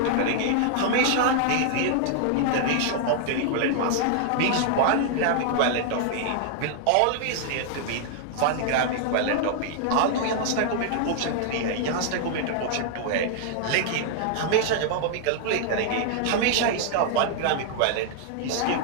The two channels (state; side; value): different; both; correlation 0.00